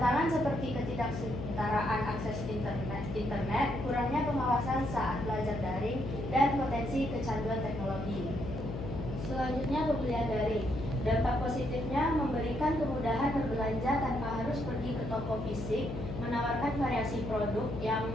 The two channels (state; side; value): noise; left; hum, 6 dB below the sound